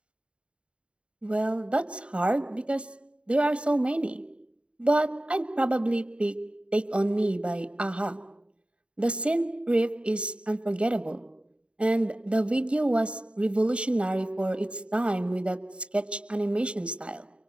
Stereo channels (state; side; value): late; left; 0.057 ms